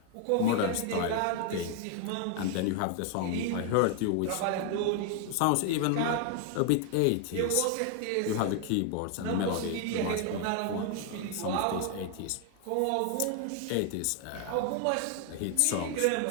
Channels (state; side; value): different; both; correlation 0.00